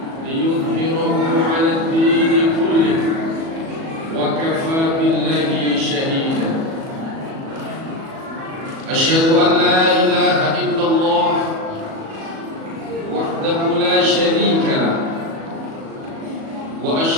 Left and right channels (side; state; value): left; late; 37 ms